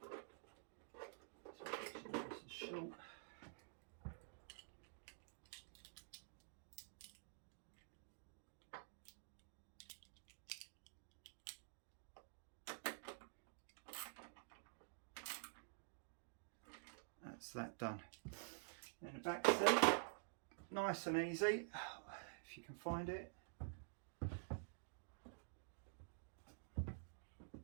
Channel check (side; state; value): left; silent; digital silence